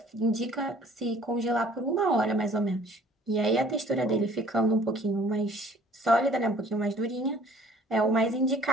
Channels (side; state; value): both; normal; correlation 0.55